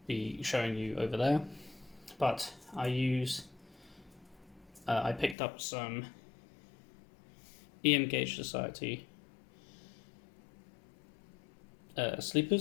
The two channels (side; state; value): right; drops out; at 5.4 s